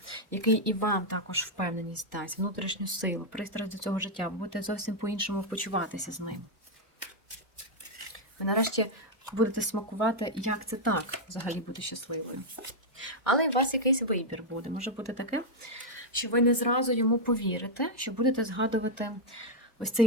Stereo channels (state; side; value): normal; both; correlation -0.01